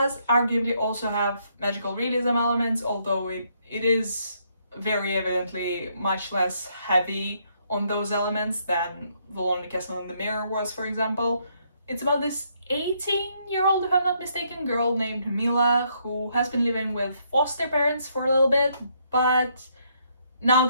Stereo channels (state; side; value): inverted; both; correlation -0.72